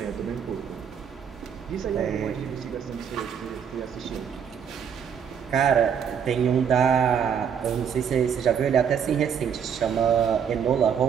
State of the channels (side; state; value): left; quieter; 7.7 dB